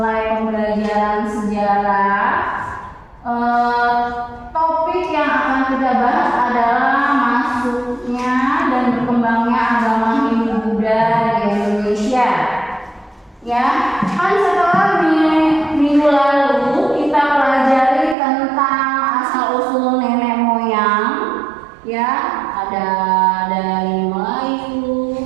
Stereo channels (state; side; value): drops out; left; at 18.2 s